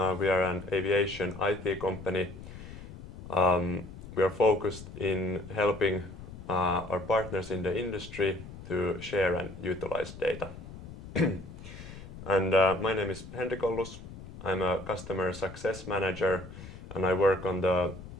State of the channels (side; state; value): left; noise; rumble, 13 dB below the sound